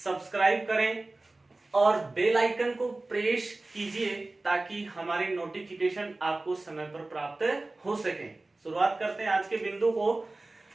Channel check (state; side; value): quieter; left; 3.0 dB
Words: करें और बेल आइकन को प्रेस कीजिए ताकि हमारे नोटिफिकेशन आपको समय पर प्राप्त हो सके। शुरुआत करते हैं आज के बिंदु को।